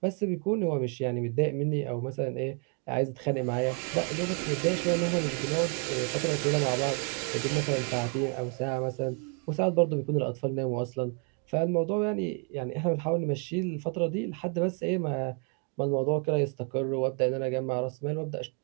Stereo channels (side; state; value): left; quieter; 39.6 dB